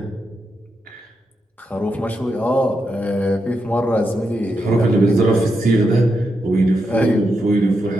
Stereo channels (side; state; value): both; normal; correlation 0.84